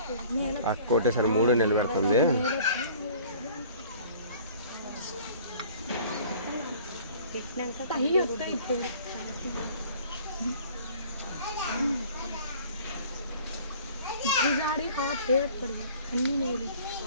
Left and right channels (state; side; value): inverted; both; correlation -0.50